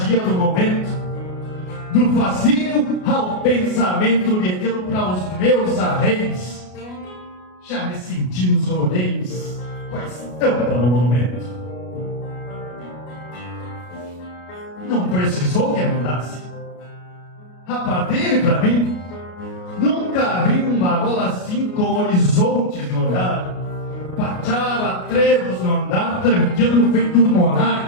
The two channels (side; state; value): right; late; 33 ms